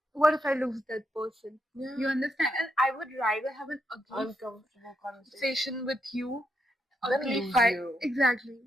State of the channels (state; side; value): normal; both; correlation 0.80